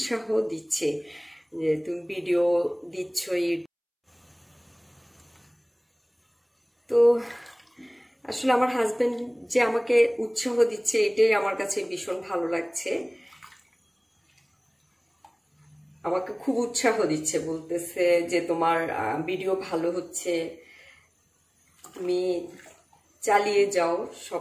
দিচ্ছে যে তুমি ভিডিও দিচ্ছ। তো আসলে আমার হাজবেন্ড যে আমাকে উৎসাহ দিচ্ছে, এটাই আমার কাছে ভীষণ ভালো লাগছে। আমাকে খুব উৎসাহ দিচ্ছে, বলতেছে যে তোমার ভিডিও ভালো হচ্ছে, তুমি চালিয়ে যাও,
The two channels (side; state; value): both; identical; correlation 1.00